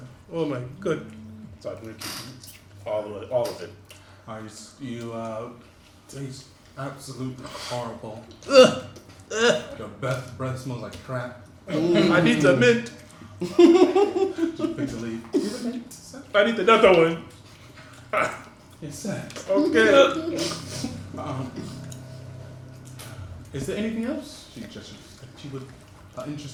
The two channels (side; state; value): both; identical; correlation 1.00